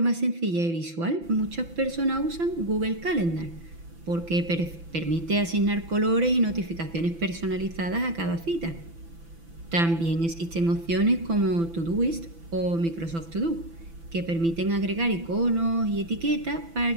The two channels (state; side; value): late; left; 6.0 ms